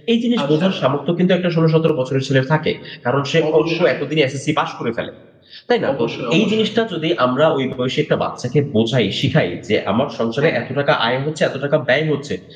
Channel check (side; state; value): both; identical; correlation 1.00